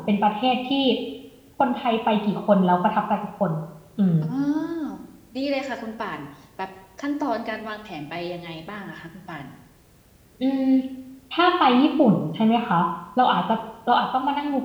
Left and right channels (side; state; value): both; identical; correlation 1.00